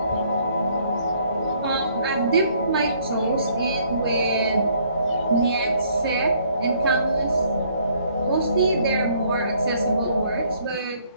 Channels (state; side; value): inverted; both; correlation -0.64